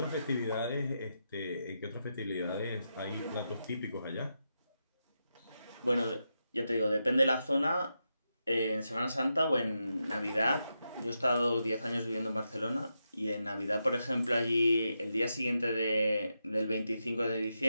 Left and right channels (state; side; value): inverted; both; correlation -0.86